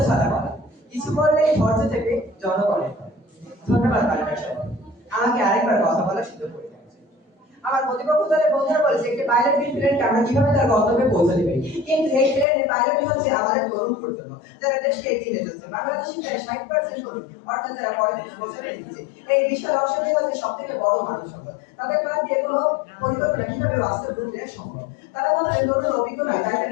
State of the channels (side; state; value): right; drops out; at 12.5 s